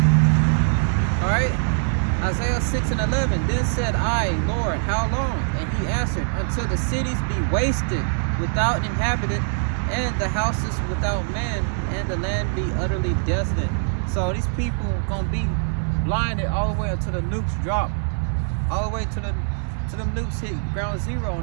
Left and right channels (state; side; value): silent; left; digital silence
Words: All right. Isaiah 6 and 11. Then said I, Lord, how long? And he answered, until the cities be wasted without an inhabitant, and the houses without man, and the land be utterly desolate. So these people gonna be blinded all the way until the nukes drop, all the way to the nukes hit ground zero on